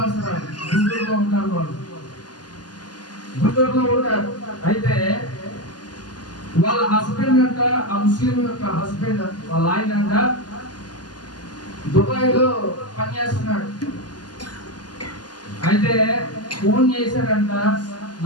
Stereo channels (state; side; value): late; right; 0.70 ms